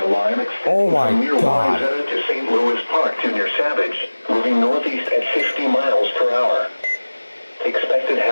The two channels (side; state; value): both; inverted; correlation -1.00